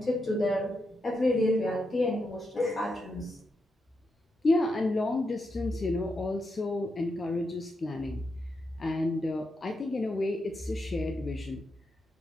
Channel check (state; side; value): normal; both; correlation 0.84